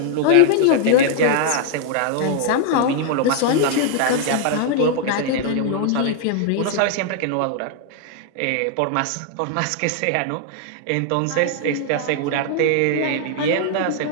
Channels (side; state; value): both; different; correlation 0.00